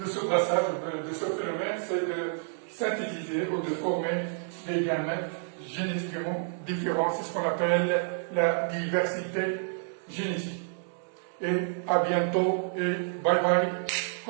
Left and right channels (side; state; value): left; silent; digital silence